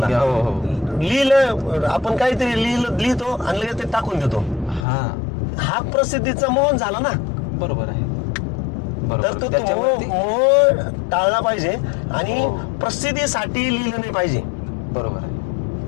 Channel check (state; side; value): drops out; right; at 4.9 s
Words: लिहिलं आपण काहीतरी लिहितो आणि लगेच ते टाकून देतो. हा प्रसिद्धीचा मोह झाला ना. बरोबर आहे. तर तो मोह टाळला पाहिजे आणि प्रसिद्धीसाठी लिहिलं नाही पाहिजे. बरोबर आहे.